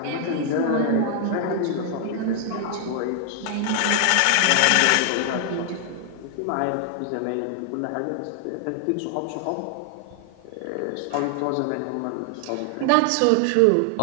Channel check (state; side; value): different; both; correlation 0.00